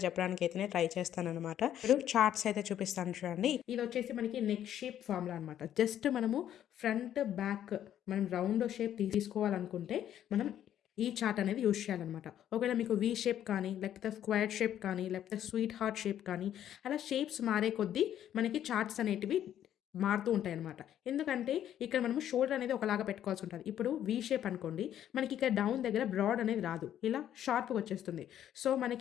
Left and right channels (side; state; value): right; quieter; 10.8 dB